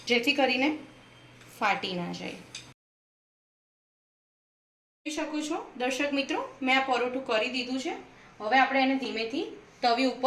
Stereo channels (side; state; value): both; identical; correlation 1.00